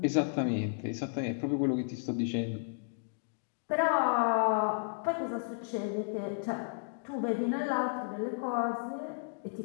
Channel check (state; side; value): silent; right; digital silence